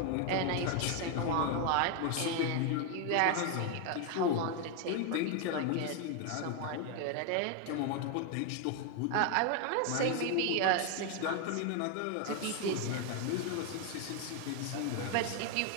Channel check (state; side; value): different; both; correlation 0.01